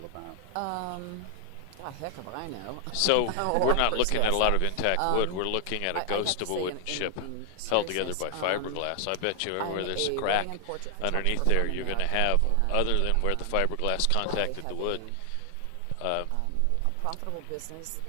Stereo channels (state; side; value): different; both; correlation 0.00